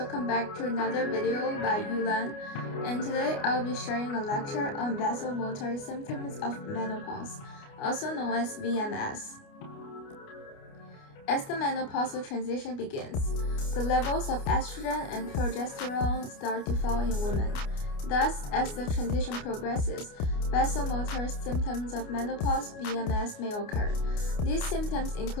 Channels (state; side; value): late; right; 29 ms